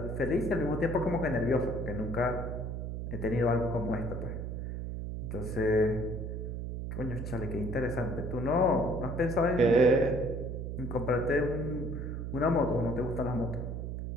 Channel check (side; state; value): right; noise; hum, 5 dB below the sound